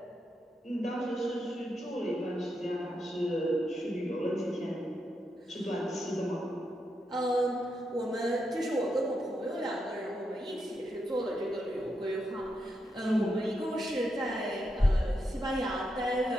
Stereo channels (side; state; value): both; normal; correlation 0.83